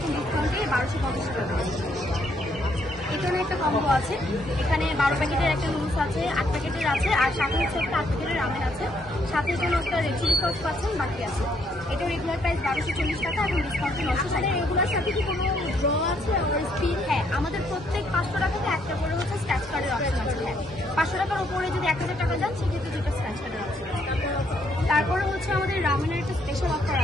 ডিসকাউন্টে 1250 টাকা। এখানে একটা কম্বো আছে, এখানে 12 প্যাকেটের একটা নুডলস আছে, 8 প্যাকেটের আছে, আর সাথে হচ্ছে একটা 8 প্যাকেটের রামেন আছে, সাথে এখানে একটা রেড চিলি সস পাচ্ছেন, বাকি আছে। এটা রেগুলার প্রাইস 1240 টাকা, এখন ডিসকাউন্টে 960। রেগুলার সাথে কি কোনো ড্র আছে আর স্পিন? হ্যাঁ, আমাদের প্রত্যেক 500 টাকাতে একটা করে হচ্ছে স্ক্র্যাচ কার্ডের অপশন আছে। হ্যাঁ, 500 টাকার উপরে যদি 1000 টাকা যান সেক্ষেত্রে 2টা স্ক্র্যাচ কার্ডের অপশন। তারপরে হচ্ছে আমাদের রামেনের একটা স্পেশাল অফার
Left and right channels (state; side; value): normal; both; correlation 0.71